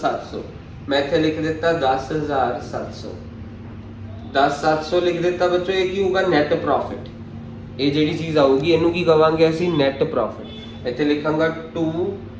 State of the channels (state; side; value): identical; both; correlation 1.00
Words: ਮੈਂ ਇੱਥੇ ਲਿਖ ਦਿੱਤਾ 10,700। 10,700 ਲਿਖ ਦਿੱਤਾ ਬੱਚੋ। ਇਹ ਕੀ ਹੋਊਗਾ? Net profit. ਇਹ ਜਿਹੜੀ ਚੀਜ਼ ਆਊਗੀ ਇਹਨੂੰ ਕੀ ਕਵਾਂਗੇ ਅਸੀਂ? Net profit. ਇੱਥੇ ਲਿਖਾਂਗਾ to